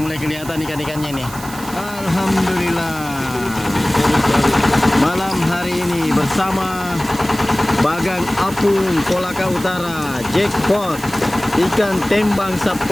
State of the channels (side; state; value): right; noise; hiss, 15 dB below the sound